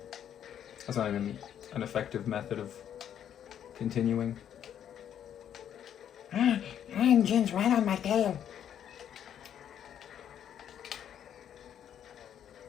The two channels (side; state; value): right; quieter; 9.6 dB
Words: That's not even an effective method of continuing. Engine's right on my tail.